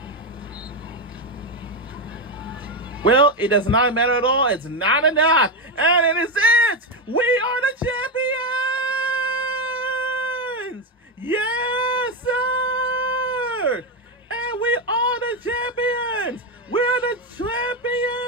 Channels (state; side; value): normal; both; correlation 0.09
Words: Well, it does not matter at all. It's not enough. And it is it. We are the champions. Yes, sir. And we are the champions. We're the